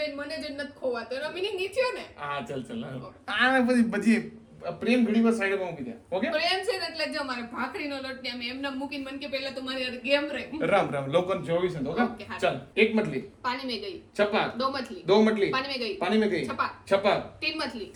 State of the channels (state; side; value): identical; both; correlation 1.00